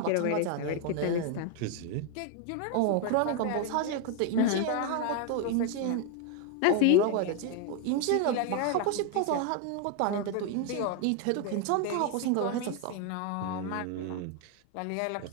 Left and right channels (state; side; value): different; both; correlation 0.01